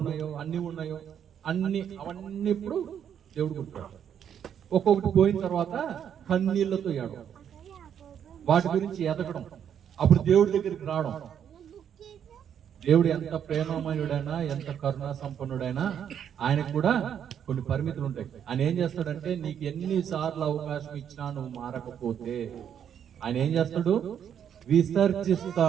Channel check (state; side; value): quieter; left; 8.8 dB